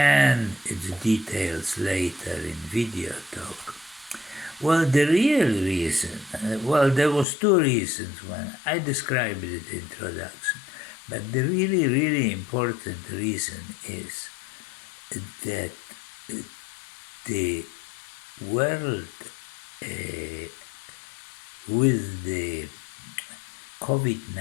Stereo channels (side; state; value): right; drops out; at 7.2 s